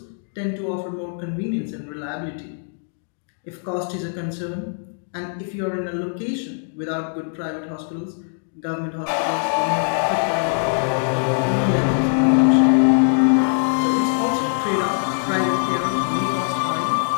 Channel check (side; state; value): right; silent; 64 dB below the other